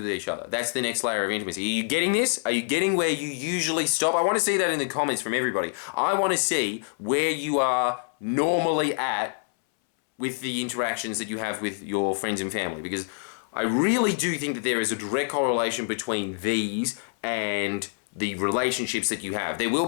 each other. That's the next layer of intimacy. Are you getting this? Are you getting where you usually stop? I want to see that in the comments from everybody. I want to see where you are normally at with the interactions that you have with your friends and family, because I really do think that there is a direct correlation between these and the relationships that you have. There will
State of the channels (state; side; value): silent; right; 61 dB below the other